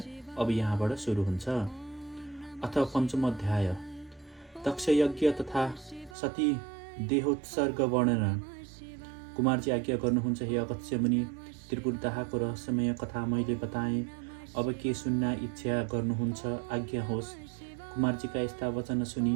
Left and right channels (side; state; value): left; drops out; at 6.2 s